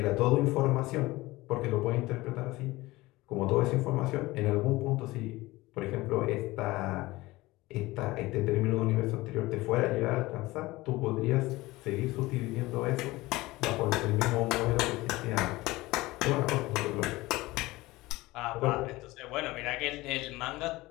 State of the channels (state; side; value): quieter; right; 19.8 dB